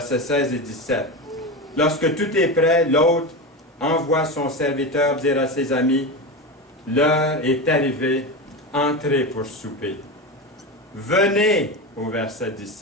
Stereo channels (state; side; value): normal; both; correlation 0.20